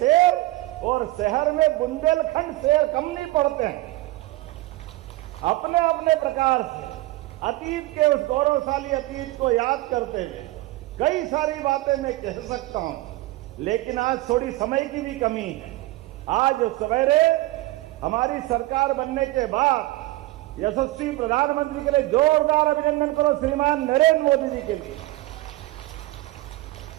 और शहर में बुंदेलखंड शेर कम नहीं पड़ते हैं। अपने अपने प्रकार से अतीत के उस गौरवशाली अतीत को याद करते हुए कई सारी बातें मैं कह सकता हूं, लेकिन आज थोड़ी समय की भी कमी है। आज सवेरे हमारी सरकार बनने के बाद यशस्वी प्रधानमंत्री के लिए जोरदार अभिनंदन करो श्रीमान नरेंद्र मोदी जी के लिए।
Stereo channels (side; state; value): left; quieter; 19.0 dB